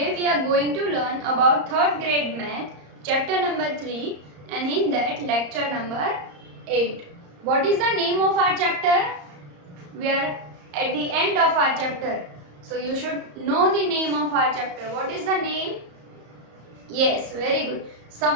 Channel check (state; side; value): late; left; 34 ms